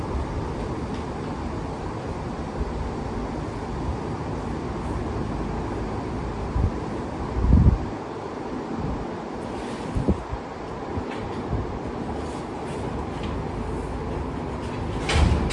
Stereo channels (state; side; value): identical; both; correlation 1.00